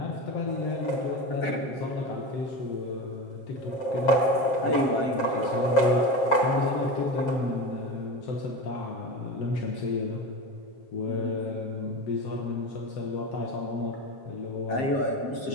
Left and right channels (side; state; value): right; late; 7.5 ms